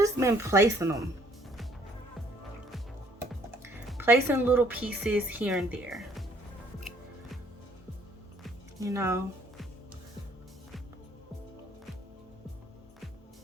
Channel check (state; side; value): normal; both; correlation 0.62